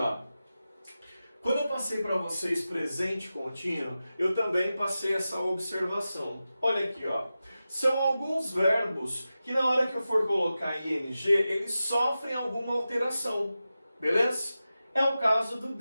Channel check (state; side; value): inverted; both; correlation -0.93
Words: Quando eu passei para vocês presente contínuo, eu também passei essa observação. Olha aqui, ó. São alguns verbos que na hora que eu for colocar ing, eles sofrem alguma alteração. Beleza? É o caso do